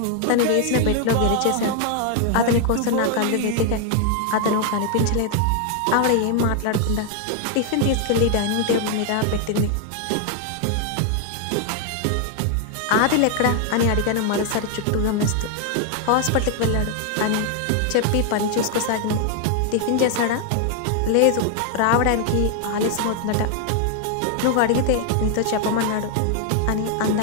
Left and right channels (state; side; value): different; both; correlation 0.00